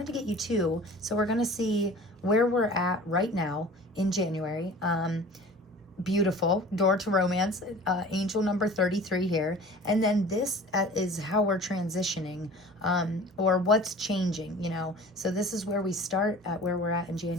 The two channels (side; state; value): both; normal; correlation 0.42